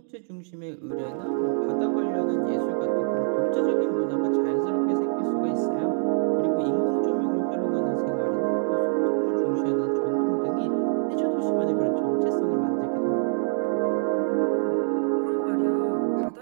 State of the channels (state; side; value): silent; left; digital silence